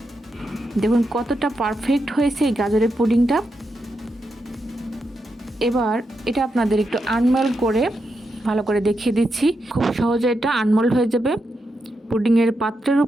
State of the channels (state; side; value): normal; both; correlation 0.85